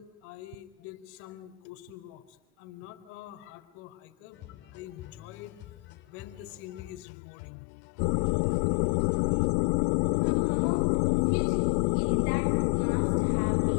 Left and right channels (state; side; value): drops out; right; at 7.1 s